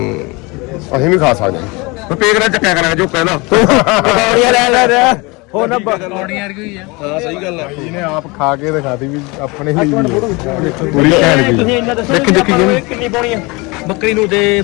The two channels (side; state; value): right; quieter; 26.0 dB